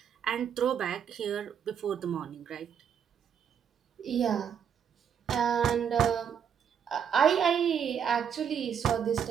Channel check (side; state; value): left; quieter; 8.0 dB